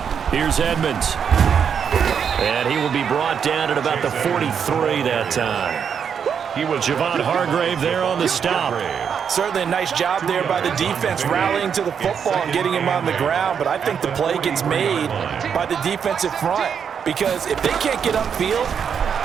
Here's Edmonds. And he will be brought down at about the 43 that time. He was Javon Hargrave there on the stop. Certainly a nice job there by the defense rallying to the football and getting him on the ground, but I think the play gets made by the defensive front because if they can't get upfield,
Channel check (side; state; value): left; quieter; 7.3 dB